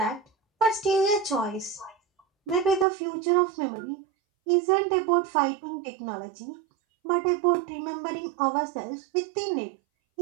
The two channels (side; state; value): left; drops out; at 2.9 s